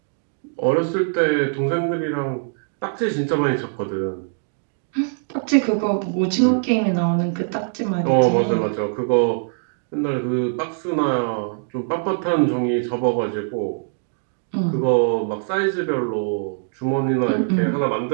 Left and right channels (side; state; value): left; silent; digital silence